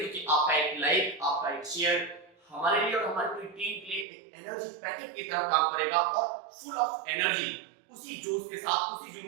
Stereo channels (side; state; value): left; drops out; at 4.0 s